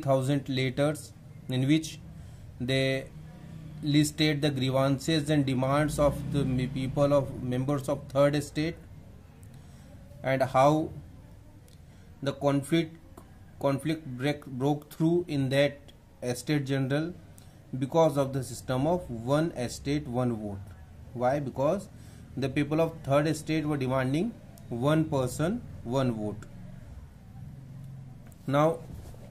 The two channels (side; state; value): both; identical; correlation 1.00